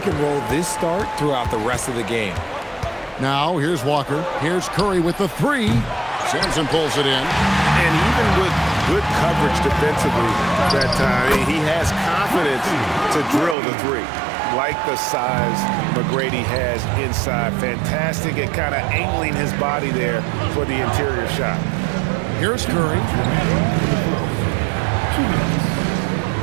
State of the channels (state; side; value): drops out; left; at 13.6 s